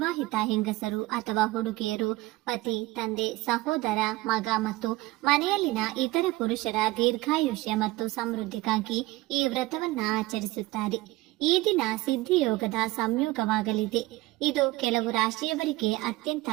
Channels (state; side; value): quieter; left; 19.6 dB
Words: ಹೆಂಗಸರು ಅಥವಾ ಹುಡುಗಿಯರು ಪತಿ, ತಂದೆ, ಸಹೋದರ, ಮಗ ಮತ್ತು ಮನೆಯಲ್ಲಿನ ಇತರ ಪುರುಷರ ದೀರ್ಘಾಯುಷ್ಯ ಮತ್ತು ಸಮೃದ್ಧಿಗಾಗಿ ಈ ವ್ರತವನ್ನ ಆಚರಿಸುತ್ತಾರೆ. ಈ ದಿನ ಸಿದ್ಧಿಯೋಗದ ಸಂಯೋಗವಾಗಲಿದೆ. ಇದು ಕೆಲವು ರಾಶಿಯವರಿಗೆ ಅತ್ಯಂತ